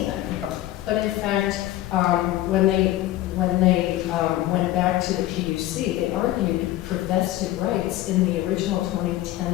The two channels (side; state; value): right; quieter; 15.0 dB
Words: but in fact, when they went back to the PUC, they argued for vested rights in the original